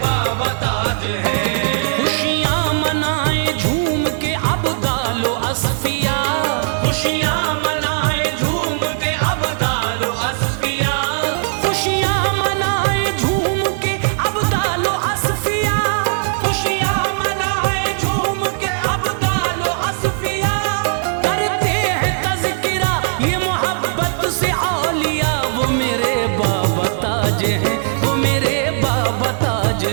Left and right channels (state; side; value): silent; left; 56 dB below the other